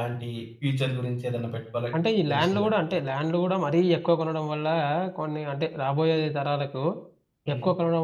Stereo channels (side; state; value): both; identical; correlation 1.00